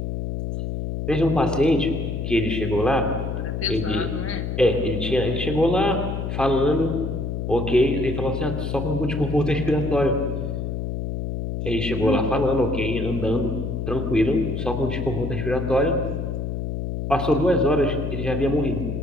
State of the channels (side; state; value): left; noise; hum, 3 dB below the sound